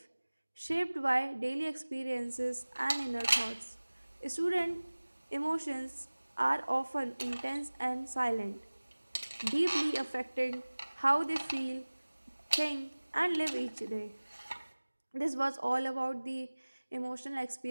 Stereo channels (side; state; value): both; inverted; correlation -1.00